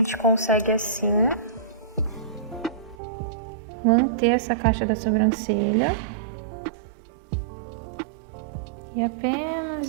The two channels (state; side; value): drops out; left; at 3.0 s